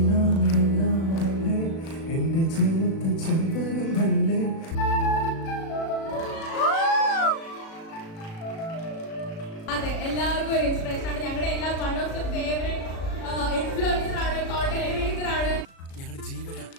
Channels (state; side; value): late; right; 36 ms